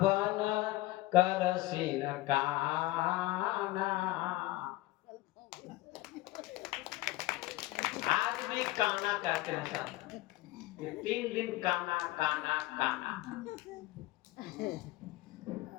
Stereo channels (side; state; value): right; quieter; 18.3 dB